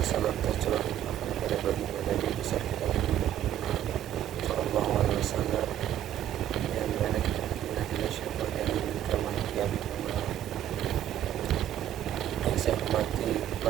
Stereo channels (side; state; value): left; quieter; 11.4 dB